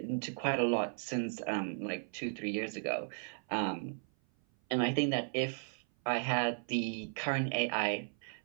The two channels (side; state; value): left; silent; 54 dB below the other